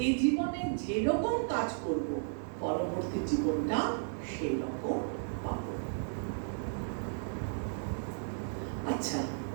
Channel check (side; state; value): left; silent; 55 dB below the other